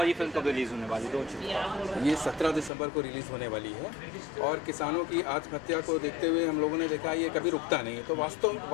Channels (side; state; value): right; drops out; at 2.7 s